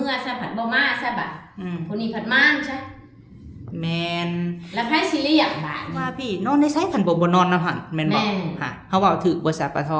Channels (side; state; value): both; identical; correlation 1.00